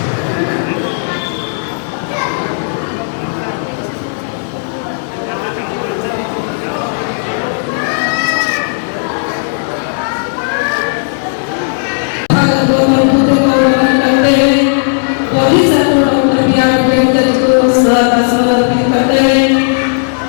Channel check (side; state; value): right; silent; digital silence